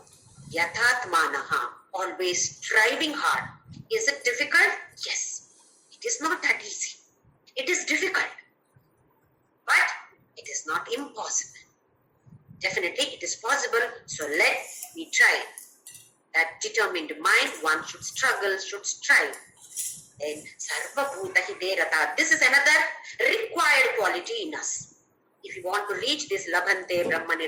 Yathatmanaha, always striving hard. Is it difficult? Yes. It is not that easy. It is difficult. But it is not impossible. Definitely it is possible. So let me try. That determined mind, one should struggle, should strive. Then Sarva Bhuta hite rataha. This is another required quality in us. If you want to reach this Labhante Brahma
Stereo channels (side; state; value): both; identical; correlation 1.00